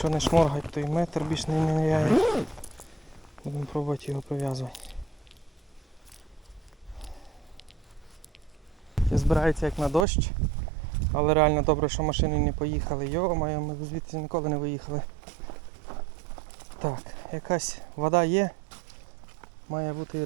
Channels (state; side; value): drops out; left; at 10.1 s